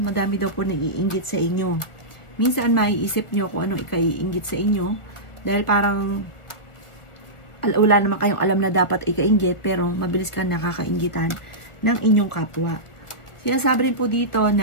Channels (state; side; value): late; right; 1.4 ms